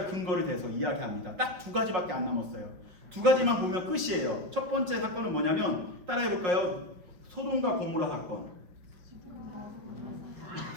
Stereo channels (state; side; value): late; left; 5.7 ms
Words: 근거를 대서 이야기합니다. 딱 두 가지밖에 안 남았어요. 두 가지만 보면 끝이에요. 첫 번째 사건은 뭐냐면 따라해볼까요? 소돔과 고모라 사건.